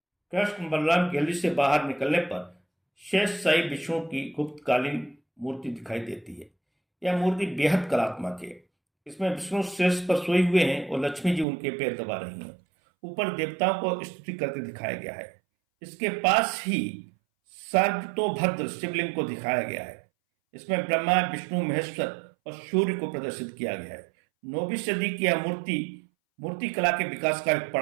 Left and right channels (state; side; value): drops out; left; at 11.5 s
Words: कृष्ण बलराम गैलरी से बाहर निकलने पर शेष शाही विष्णु की गुप्तकालीन मूर्ति दिखाई देती है। यह मूर्ति बेहद कलात्मक है। इसमें विष्णु शेष पर सोए हुए हैं और लक्ष्मी जी उनके पैर दबा रही हैं। ऊपर देवताओं को स्तुति करते दिखाया गया है। इसके पास ही सर्वतोभद्र शिवलिंग को दिखाया गया है। इसमें ब्रह्मा, विष्णु, महेश्वर और सूर्य को प्रदर्शित किया गया है। 9वीं सदी की यह मूर्ति कला के विकास का एक